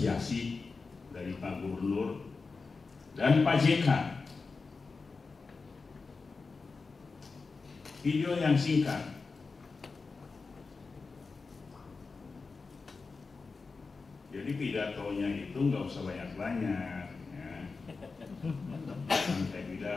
dari Pak Gubernur dan Pak JK. Video yang singkat. Jadi pidatonya itu nggak usah banyak-banyak. Ya. Saya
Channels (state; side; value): quieter; right; 4.3 dB